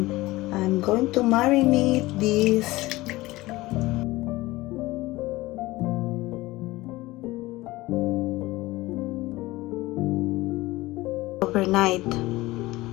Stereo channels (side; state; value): right; quieter; 19.2 dB